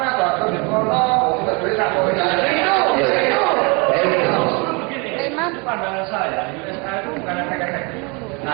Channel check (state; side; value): quieter; left; 30.3 dB